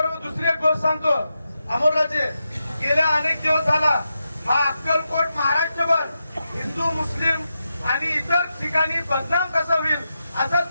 दुसरी एक गोष्ट सांगतो, अमोलराजे गेल्या अनेक दिवस झाला हा अक्कलकोट महाराष्ट्रभर हिंदू मुस्लिम आणि इतर ठिकाणी बदनाम कसा होईल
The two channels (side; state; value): both; inverted; correlation -0.88